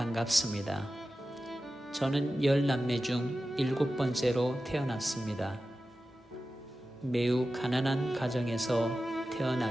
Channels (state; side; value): normal; both; correlation 0.93